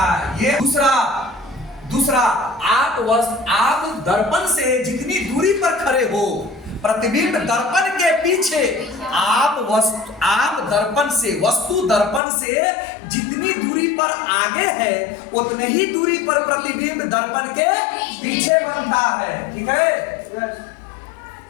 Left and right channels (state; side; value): drops out; right; at 12.2 s